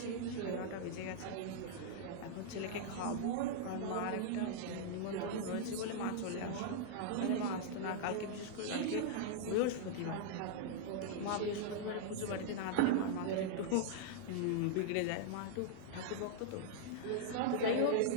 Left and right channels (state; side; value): different; both; correlation -0.01